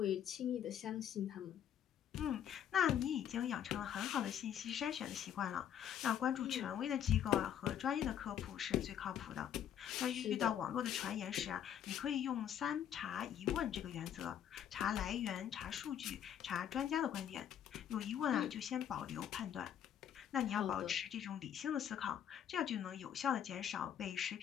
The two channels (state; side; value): quieter; right; 9.6 dB